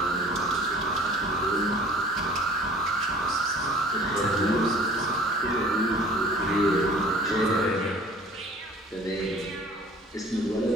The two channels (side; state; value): both; normal; correlation 0.48